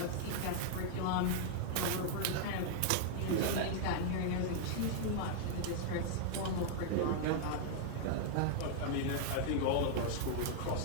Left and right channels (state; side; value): different; both; correlation -0.01